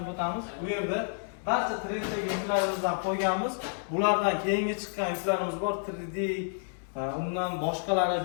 o'tamiz. Bu yerda barcha 3D yuklarimizni qo'yganmiz. Bulardan keyingi chiqqan yuklarimiz bor, 3D undan boshqalari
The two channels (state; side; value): silent; right; 58 dB below the other